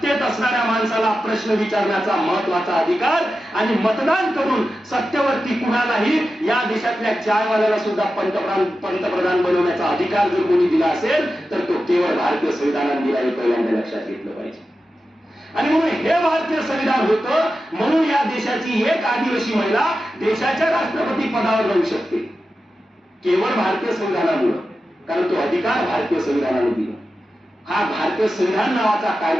असणाऱ्या माणसाला प्रश्न विचारण्याचा महत्वाचा अधिकार आणि मतदान करून सत्तेवरती कुणालाही, या देशातल्या चायवाल्याला सुद्धा पंतप्रधान बनवण्याचा अधिकार जर कोणी दिला असेल तर तो केवळ भारतीय संविधानाने दिला, हे पहिल्यांदा लक्षात घेतलं पाहिजे. आणि म्हणून हे भारतीय संविधान होतं म्हणून या देशाची एक आदिवासी महिला देशाच्या राष्ट्रपती पदावर राहू शकते, केवळ भारतीय संविधानामुळे, कारण तो अधिकार भारतीय संविधानाने दिला. हा भारतीय संविधान नावाचा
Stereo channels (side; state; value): both; normal; correlation 0.92